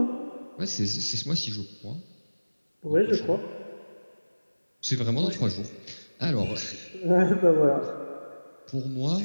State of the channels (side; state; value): both; inverted; correlation -1.00